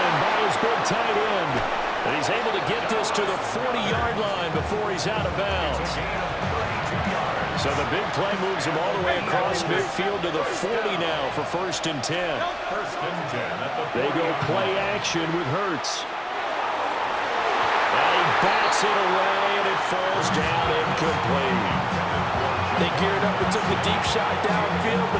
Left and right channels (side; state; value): both; identical; correlation 1.00